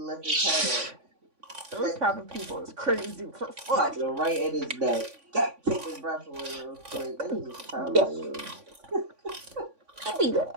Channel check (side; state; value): left; late; 3.5 ms